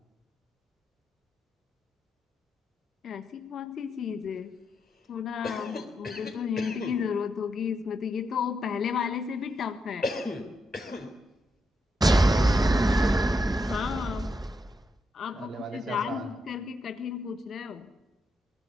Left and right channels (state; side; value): normal; both; correlation 0.82